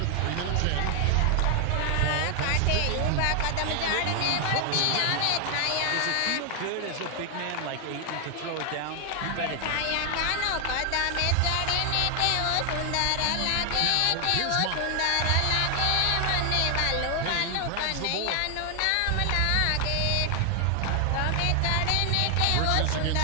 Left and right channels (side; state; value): both; different; correlation 0.00